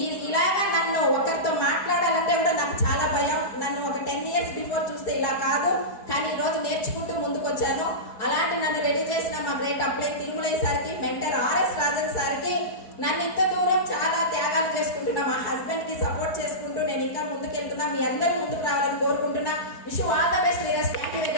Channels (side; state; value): right; late; 4.7 ms